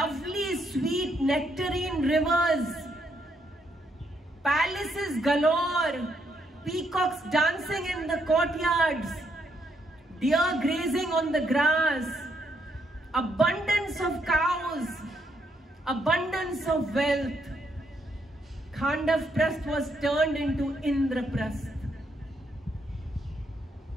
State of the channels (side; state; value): both; normal; correlation 0.75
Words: sweet nectarine rivers, palaces galore, peacocks dancing in the courtyards, deer grazing on the grass, abundance of cows, abundance of wealth. Khandavprastha was turned into Indraprastha